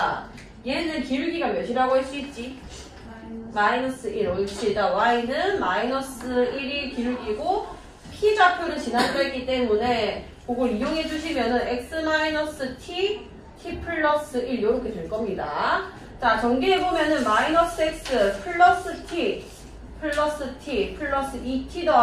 얘는 길기가 몇이라고 할 수 있지? 마이너스 1. 옳지. 자, y는 마이너스 1이 길기고 P좌표를 지나려 했기 때문에 그걸 이용해 주시면은 x-t, t 플러스 1 이렇게 될 겁니다. 자, 전개해 보면은 마이너스 x 플러스 t 플러스 t 플러스 2t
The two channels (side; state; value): both; identical; correlation 1.00